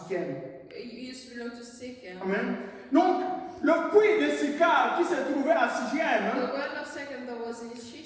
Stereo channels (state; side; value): identical; both; correlation 1.00